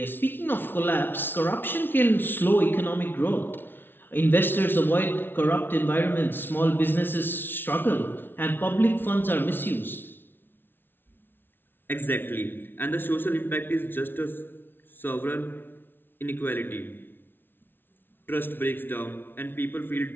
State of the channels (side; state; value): right; late; 0.10 ms